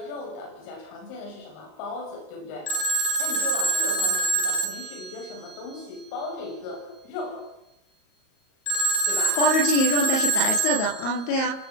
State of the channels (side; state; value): right; late; 38 ms